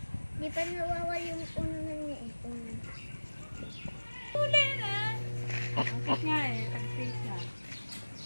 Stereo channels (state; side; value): inverted; both; correlation -1.00